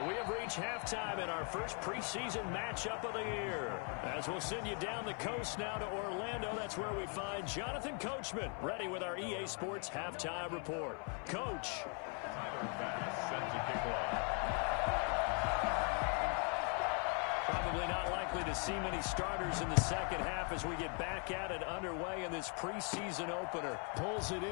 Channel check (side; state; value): right; quieter; 38.8 dB